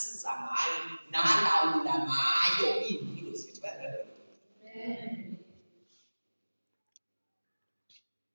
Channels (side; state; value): both; inverted; correlation -1.00